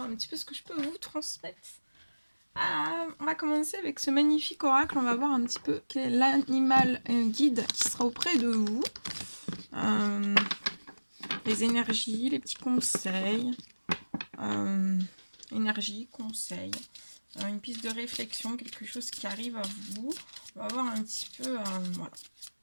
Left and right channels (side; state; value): both; inverted; correlation -1.00